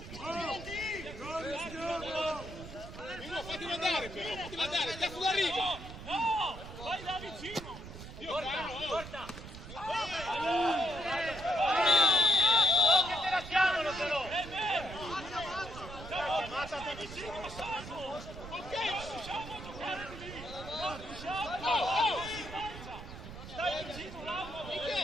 Mimmo, fatelo andare però, fatelo andare, cazzo d'arrivo! No! Vai da vicino! Dio caro! Porta! Che te la chiamano però! È vero! Ammazzate vicino, salvo! Ok, non riusciamo a giocare lì! Non riusciamo! Stai vicino, Lauro!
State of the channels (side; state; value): right; noise; rumble, 12 dB below the sound